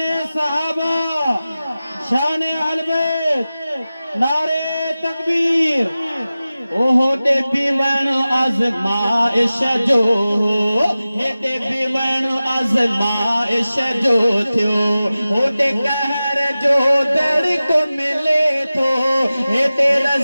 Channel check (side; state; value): both; inverted; correlation -0.96